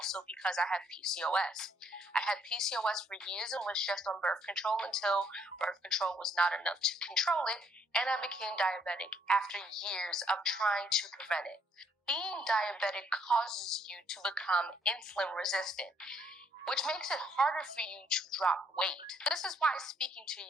because I have PCOS. I had PCOS for years and was just on birth control until birth control was not enough to control it, and I became diabetic after years of trying to prevent it. Being diabetic causes you to become insulin resistant, which makes it harder for you to drop weight. This is why speaking to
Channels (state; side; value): normal; both; correlation 0.68